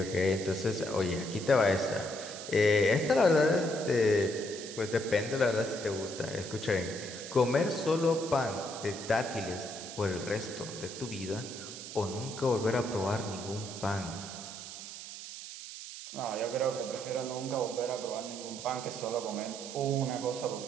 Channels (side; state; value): right; noise; hiss, 11 dB below the sound